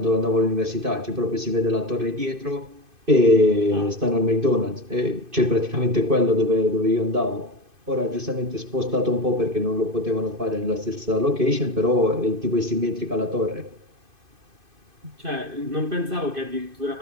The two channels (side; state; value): left; late; 2.5 ms